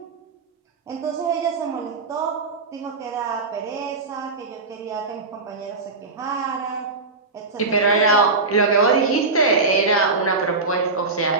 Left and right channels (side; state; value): left; quieter; 3.8 dB